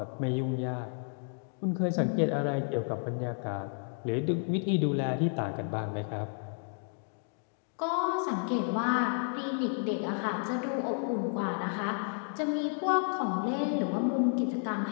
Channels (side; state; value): right; silent; 57 dB below the other